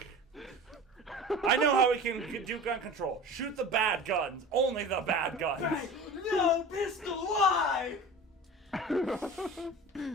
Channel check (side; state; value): both; normal; correlation 0.36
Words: I know how we can do gun control. Shoot the bad guns. Only the bad guns. No pistol, why?